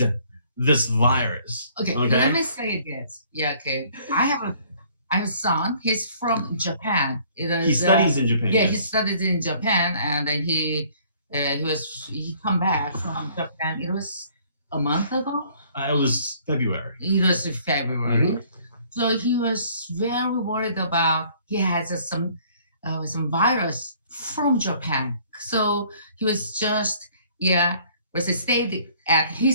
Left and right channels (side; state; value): both; inverted; correlation -0.59